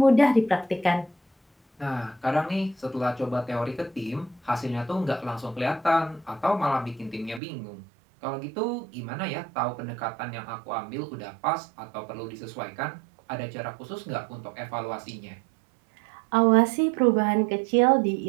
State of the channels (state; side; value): drops out; left; at 7.4 s